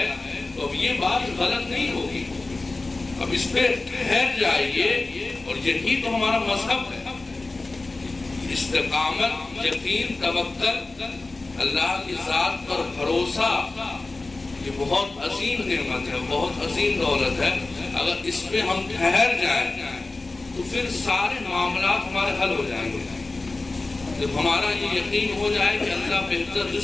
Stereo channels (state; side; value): quieter; right; 3.3 dB